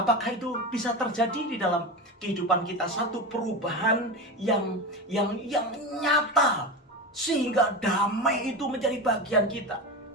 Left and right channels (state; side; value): normal; both; correlation 0.22